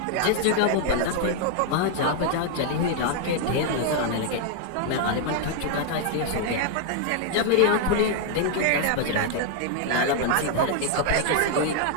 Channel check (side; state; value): both; different; correlation 0.00